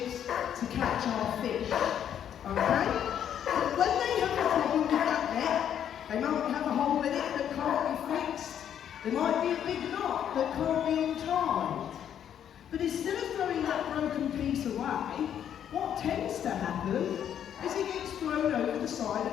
to catch our fish. Okay? But when they have a problem with that net, they might have a hole in it that can't be fixed. There might be a big knot that can't be untied. But instead of throwing that broken piece away, what tends to happen is it gets thrown over the side of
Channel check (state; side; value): quieter; right; 9.5 dB